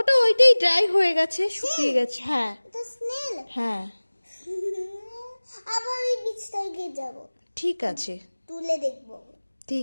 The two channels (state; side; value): inverted; both; correlation -1.00